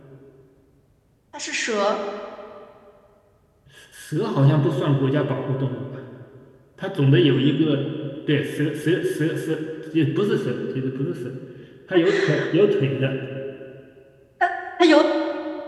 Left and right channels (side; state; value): both; identical; correlation 1.00